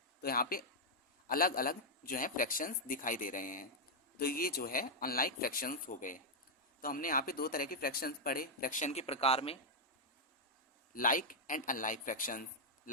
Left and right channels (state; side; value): normal; both; correlation -0.03